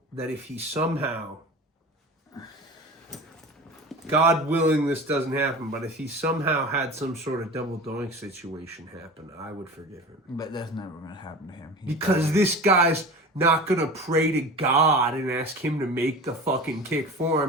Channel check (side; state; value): both; normal; correlation 0.34